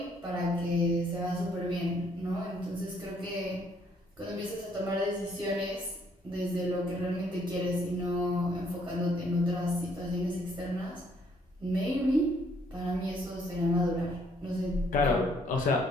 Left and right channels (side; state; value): both; normal; correlation 0.67